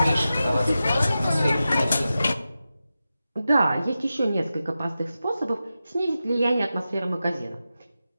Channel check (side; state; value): both; inverted; correlation -0.92